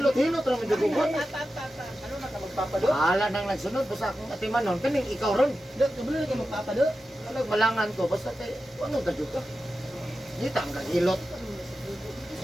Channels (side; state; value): both; normal; correlation 0.92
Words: lang medyo gugot. Ala nang nagsunod, basta akong atiman nun. Kaning ikaw ron. Kabili ka magpapado. Alag malangan ko, basta kay, ano ka dyan ka? Dito ang kagilot.